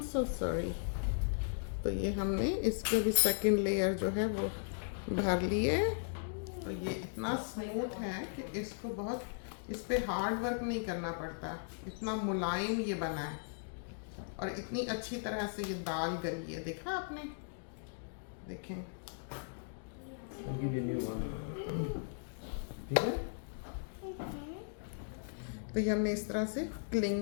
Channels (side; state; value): right; silent; digital silence